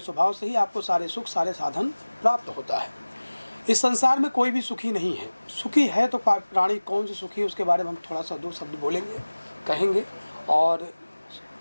स्वभाव से ही आपको सारे सुख सारे साधन प्राप्त होता है। इस संसार में कोई भी सुखी नहीं है। सुखी है तो प्राणी कौन सी सुखी है, उसके बारे में हम थोड़ा सा 2 शब्द बोलेंगे, कहेंगे। और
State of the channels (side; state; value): both; inverted; correlation -1.00